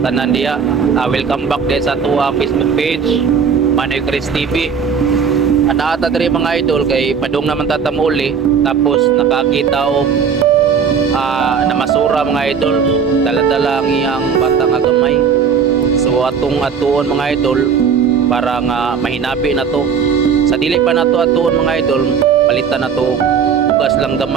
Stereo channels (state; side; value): quieter; left; 6.6 dB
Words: diya. Welcome back din sa tuwa Facebook page, Manoy Chris TV. Ata diri mga idol kay padung naman tatamuli, tapos nakakita og namasura mga idol, dala-dala ang iyang bata nga gamay. So atong atuon mga idol para nga mahinabi na to. Sa dili pa nato atuon mga idol, palitan na to bugas lang